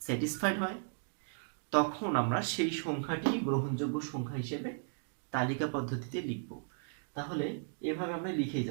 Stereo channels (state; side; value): silent; left; digital silence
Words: হয়, তখন আমরা সেই সংখ্যাটি গ্রহণযোগ্য সংখ্যা হিসেবে তালিকা পদ্ধতিতে লিখব। তাহলে এভাবে আমরা লিখেই